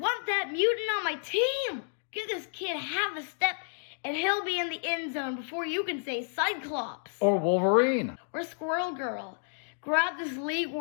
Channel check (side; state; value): right; silent; digital silence